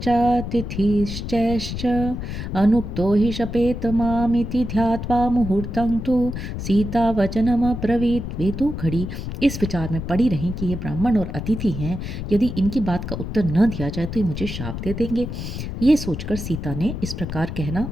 अनुक्तो हि शपेत मामिति ध्यात्वा मुहूर्तं तु सीता वचनमब्रवीत्। वे दो घड़ी इस विचार में पड़ी रहीं कि ये ब्राह्मण और अतिथि हैं, यदि इनकी बात का उत्तर न दिया जाए तो ये मुझे शाप दे देंगे। ये सोचकर सीता ने इस प्रकार कहना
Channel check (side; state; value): left; noise; rumble, 6 dB below the sound